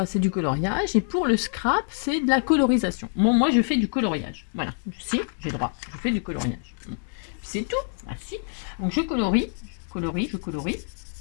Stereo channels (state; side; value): silent; right; 61 dB below the other